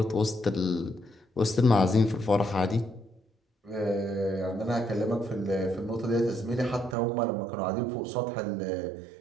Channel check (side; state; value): left; drops out; at 7.0 s